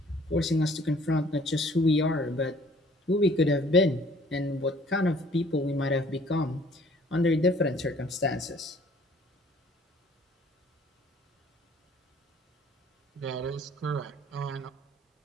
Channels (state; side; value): normal; both; correlation 0.56